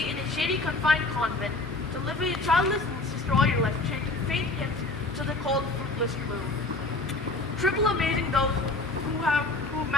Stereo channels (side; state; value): right; quieter; 3.2 dB